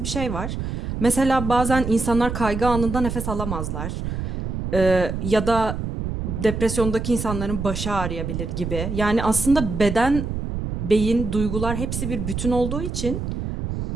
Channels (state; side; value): noise; right; rumble, 4 dB below the sound